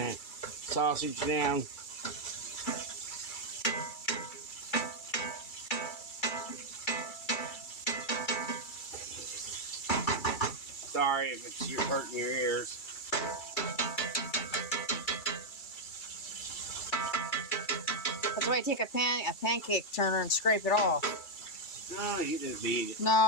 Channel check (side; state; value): right; late; 2.3 ms